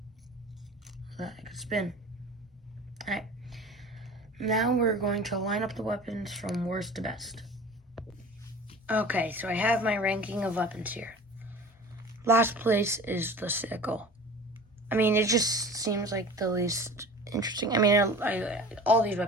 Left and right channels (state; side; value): normal; both; correlation 0.39